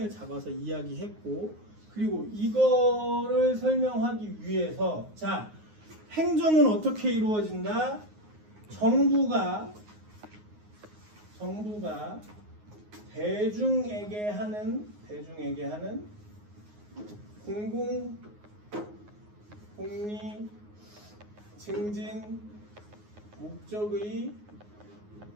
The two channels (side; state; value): left; late; 9.5 ms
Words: 잡아서 이야기했고, 그리고 이거를 설명하기 위해서 자, 행정은 어떻게 이루어진다? 정부가 대중에게 하는 공공 공리 증진 목적의